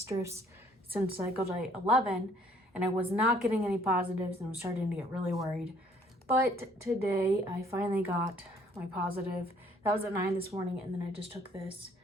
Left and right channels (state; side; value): normal; both; correlation 0.61